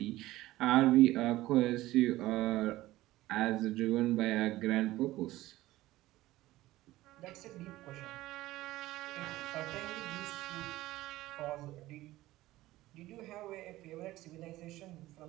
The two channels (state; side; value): quieter; left; 16.8 dB